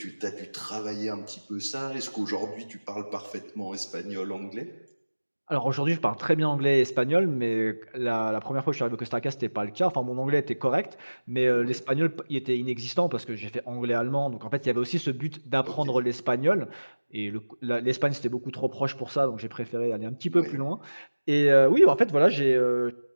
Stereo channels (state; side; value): inverted; both; correlation -1.00